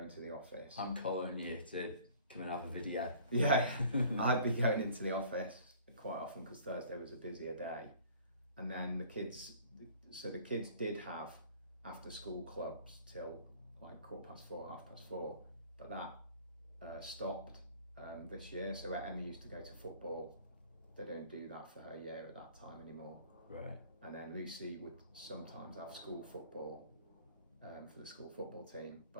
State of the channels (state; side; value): inverted; both; correlation -0.50